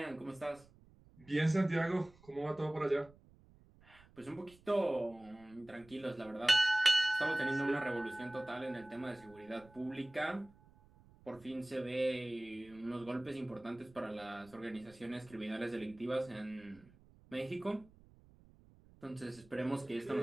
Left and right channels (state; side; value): noise; right; rumble, 25 dB below the sound